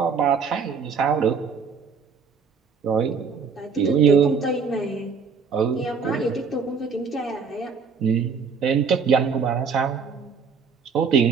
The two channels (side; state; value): left; quieter; 5.6 dB